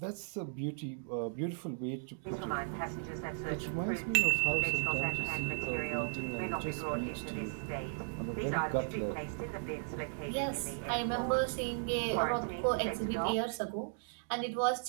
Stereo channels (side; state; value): left; silent; digital silence